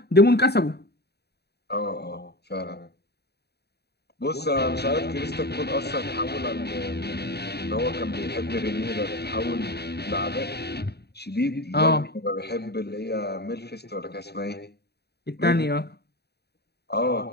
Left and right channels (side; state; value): right; late; 0.48 ms